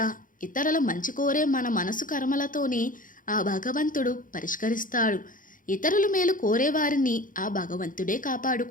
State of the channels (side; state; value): right; late; 0.39 ms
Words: ఇతరుల మంచి కోరే మన మనసు కర్మలతోనే ఆ భగవంతుడు పరిష్కరిస్తాడు. ఇతరుల మేలు కోరేవారిని ఆ భగవంతుడే